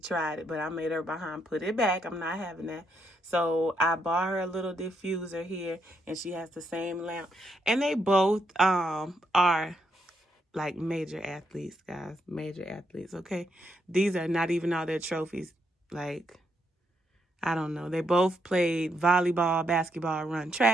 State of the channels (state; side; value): normal; both; correlation 0.78